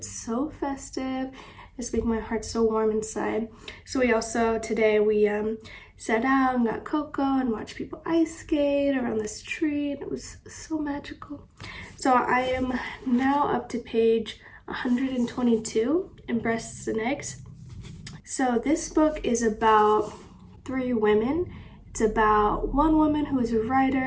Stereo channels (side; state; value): both; identical; correlation 1.00